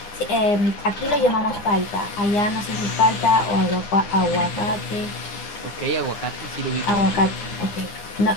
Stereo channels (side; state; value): right; late; 10 ms